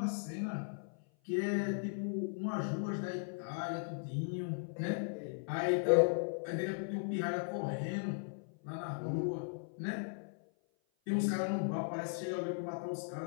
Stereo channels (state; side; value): silent; right; 53 dB below the other